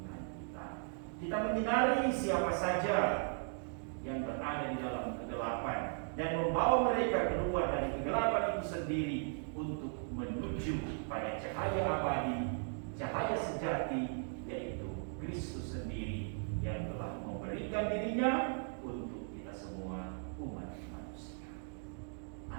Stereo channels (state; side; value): silent; left; 53 dB below the other